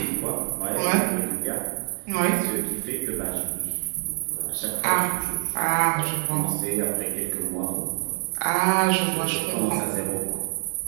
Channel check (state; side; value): silent; left; 61 dB below the other